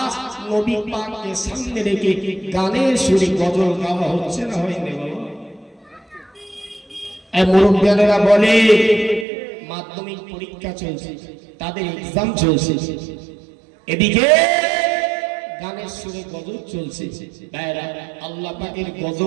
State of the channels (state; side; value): drops out; left; at 9.2 s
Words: নবী পাককে সামনে রেখে গানের সুরে গজল গাওয়া হচ্ছে না হয়নি বাবা? এই মুরব্বিয়ানেরা বলে মাধ্যমিক পরীক্ষা চলছে, তাদের এক্সাম চলছে, এদিকে গানের সুরে গজব চলছে। ভাইরা, আল্লাহ পাকের